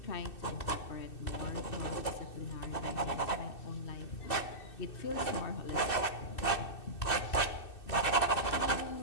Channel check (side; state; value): right; late; 2.6 ms